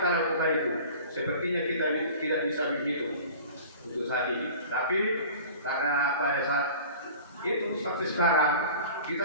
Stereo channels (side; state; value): both; inverted; correlation -0.41